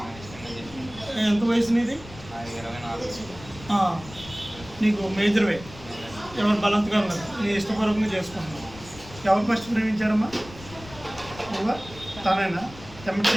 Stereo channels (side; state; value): left; noise; rumble, 17 dB below the sound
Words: ఎంత వయసు నీది? నీకు మేజర్ వే. ఎవరు బలాత్కారం లేదు, నీ ఇష్టపూర్వకంగా చేసుకుంటున్నావు. ఎవరు ఫస్ట్ ప్రేమించారమ్మా? నువ్వా? తనేనా?